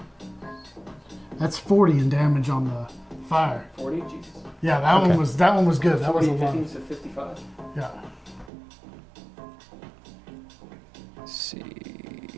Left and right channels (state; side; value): drops out; left; at 8.5 s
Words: That's 40 in damage on the Fire. 40? Jesus. Yeah, that one was good. That was a 40, lot. 15, so 55. Yeah. Let's see.